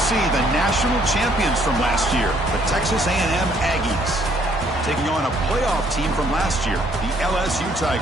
see the national champions from last year, the Texas A&M Aggies, taking on a playoff team from last year, the LSU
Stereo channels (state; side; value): normal; both; correlation 0.65